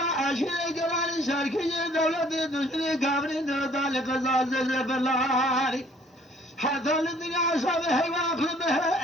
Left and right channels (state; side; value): normal; both; correlation 0.58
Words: اشي قران شركي دولة دشري كامري ذلك زازل بلاري حتى الدنيا صبح